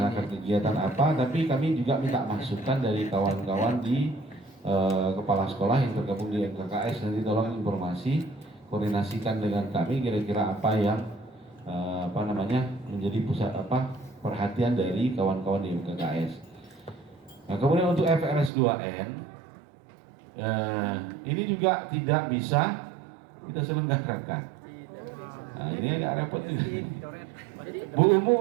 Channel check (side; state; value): left; drops out; at 18.5 s